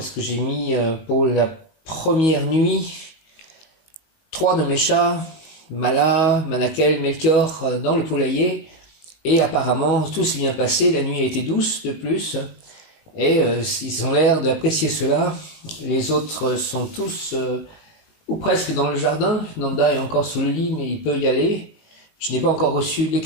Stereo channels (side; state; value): right; late; 19 ms